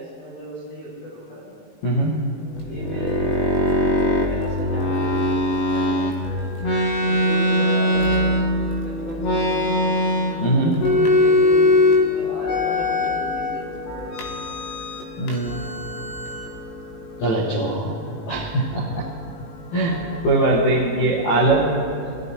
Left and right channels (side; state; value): right; late; 18 ms